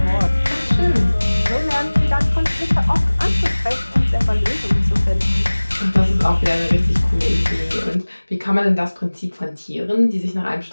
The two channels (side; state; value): both; inverted; correlation -1.00